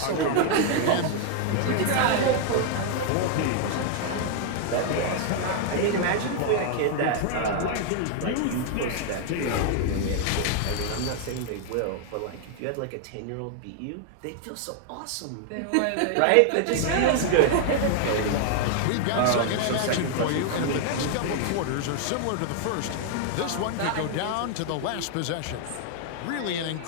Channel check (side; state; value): both; different; correlation 0.00